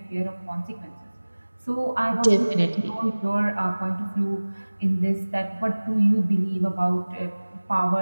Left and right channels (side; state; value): both; inverted; correlation -1.00